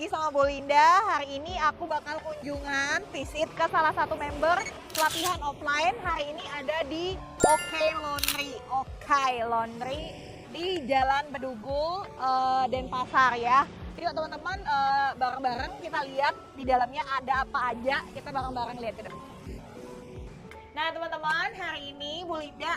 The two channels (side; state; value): both; identical; correlation 1.00